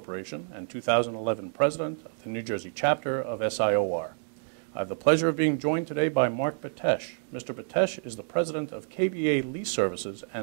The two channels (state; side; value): silent; left; 58 dB below the other